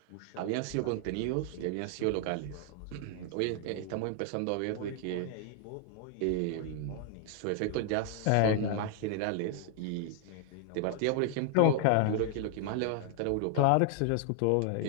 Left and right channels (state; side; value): different; both; correlation 0.00